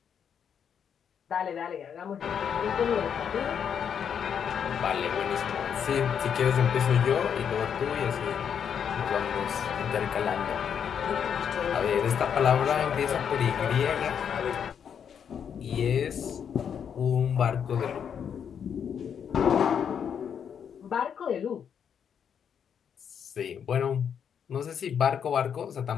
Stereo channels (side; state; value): right; quieter; 7.8 dB